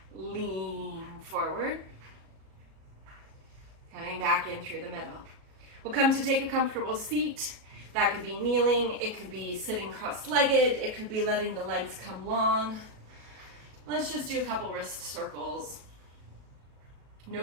Lean forward. Coming back in through the middle. We'll come to take a comfortable seat. That could be kneeling. It could be sitting cross-legged. It could be letting the legs come long. Let's just do a couple wrist circles.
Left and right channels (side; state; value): left; late; 37 ms